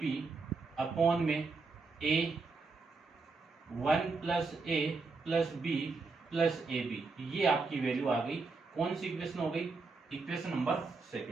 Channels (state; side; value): quieter; left; 4.1 dB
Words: upon में A 1 plus A plus B plus A B, ये आपकी वैल्यू आ गई। कौन सी इक्वेशन हो गई, इक्वेशन नंबर